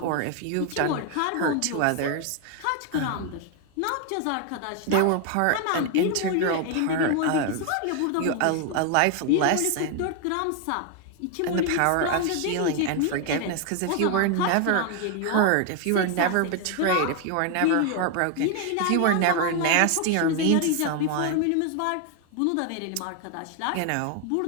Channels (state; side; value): different; both; correlation 0.00